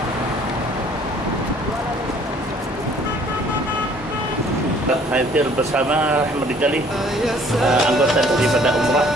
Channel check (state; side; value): normal; both; correlation 0.57